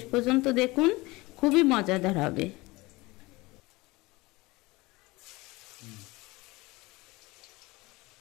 পর্যন্ত দেখুন, খুবই মজাদার হবে।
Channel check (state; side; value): quieter; right; 22.2 dB